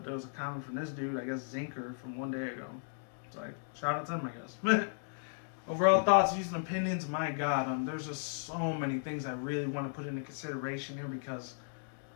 there was a comment from this dude, I guess Zinker, from one day ago. So shout out to him, I guess. Overall thoughts, views, and opinions, my God, there's just so many things I really want to put into consideration here, because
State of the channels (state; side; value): silent; right; digital silence